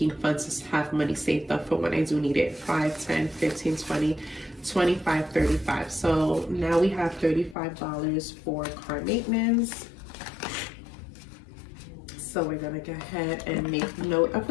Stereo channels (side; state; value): right; drops out; at 7.6 s